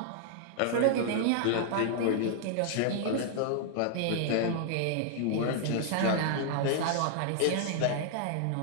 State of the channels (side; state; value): both; different; correlation -0.01